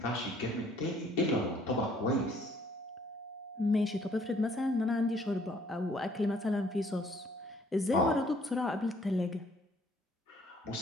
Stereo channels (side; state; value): both; normal; correlation 0.61